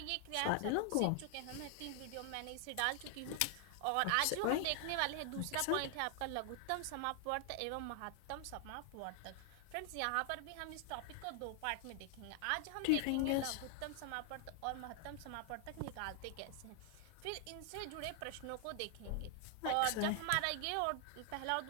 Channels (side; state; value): both; different; correlation 0.00